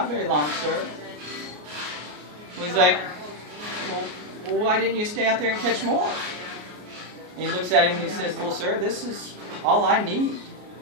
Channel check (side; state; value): left; late; 33 ms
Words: very long, sir." He's like, well, why didn't you stay out there and catch more? And he looks at him and he says, well, sir, this is all I need